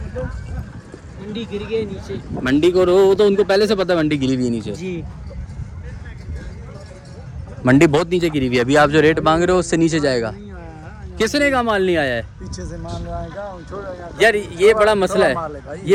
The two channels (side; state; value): both; identical; correlation 1.00